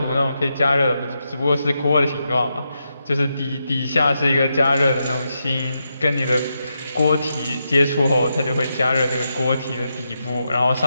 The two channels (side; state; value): both; inverted; correlation -0.85